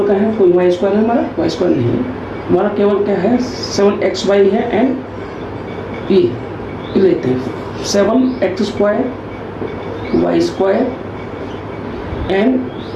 का है, कोई वाई स्क्वायर है हमारा, वाई स्क्वायर नहीं है हमारा, केवल क्या है 7xy है, एंड ये लेते हैं 7x square Y square and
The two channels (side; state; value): both; identical; correlation 1.00